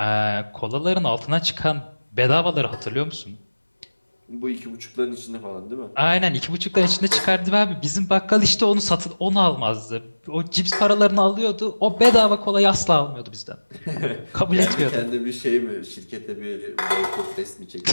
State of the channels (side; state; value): both; inverted; correlation -1.00